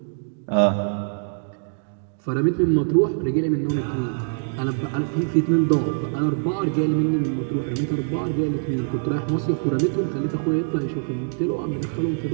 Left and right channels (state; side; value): silent; left; digital silence